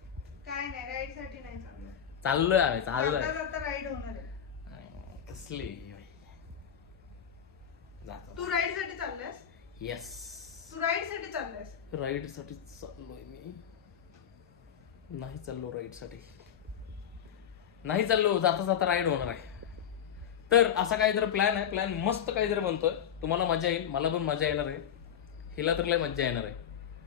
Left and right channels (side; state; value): right; quieter; 8.9 dB